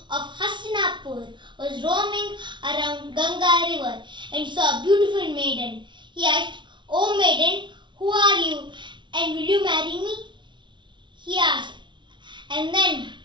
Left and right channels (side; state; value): left; late; 0.23 ms